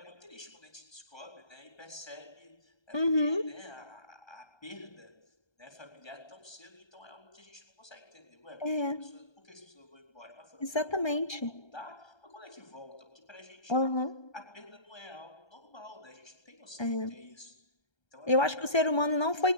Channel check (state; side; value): late; right; 1.3 ms